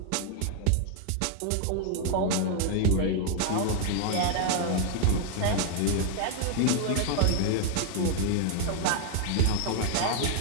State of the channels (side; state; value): both; different; correlation 0.00